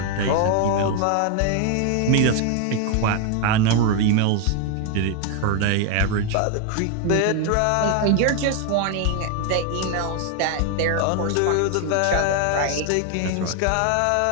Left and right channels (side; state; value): both; different; correlation 0.01